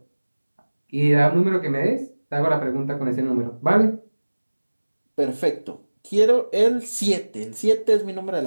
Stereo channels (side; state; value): both; inverted; correlation -1.00